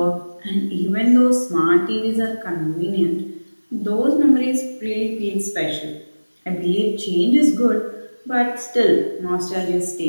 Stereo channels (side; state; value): both; inverted; correlation -1.00